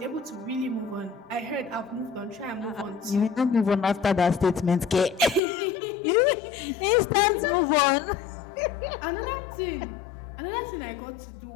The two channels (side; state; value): right; drops out; at 5.4 s